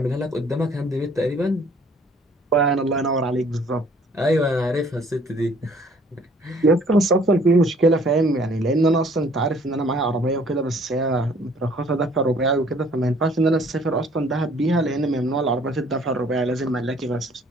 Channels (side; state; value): both; normal; correlation 0.58